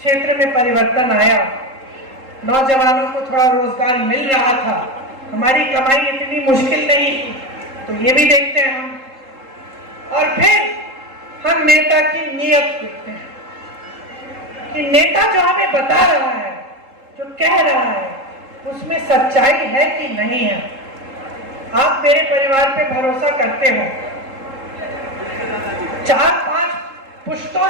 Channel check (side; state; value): left; late; 3.7 ms